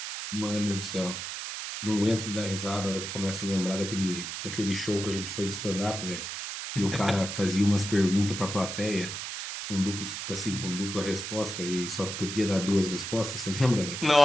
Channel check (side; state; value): right; noise; hiss, 6 dB below the sound